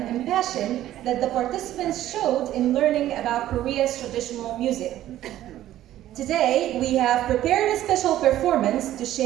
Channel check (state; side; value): quieter; left; 13.3 dB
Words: and passion that the participants showed in learning about Korea's traditional music. Today, we have prepared a special performance to